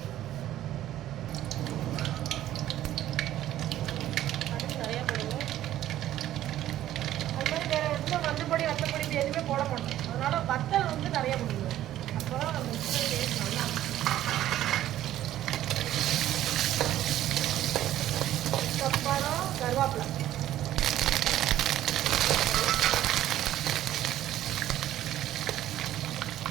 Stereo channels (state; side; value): quieter; left; 13.0 dB